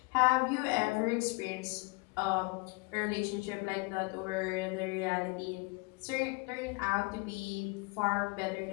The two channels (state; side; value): quieter; right; 29.2 dB